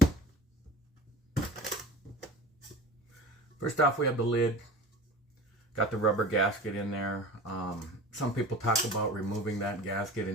First off, we have the lid. Got the rubber gasket in there. Some people talk about removing that gasket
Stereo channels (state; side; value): normal; both; correlation 0.37